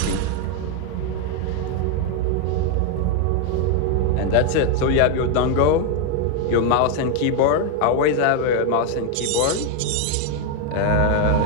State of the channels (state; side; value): different; both; correlation 0.01